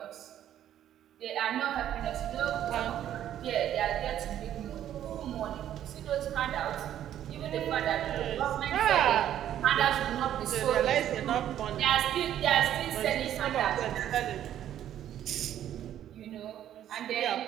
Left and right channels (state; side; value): quieter; left; 11.1 dB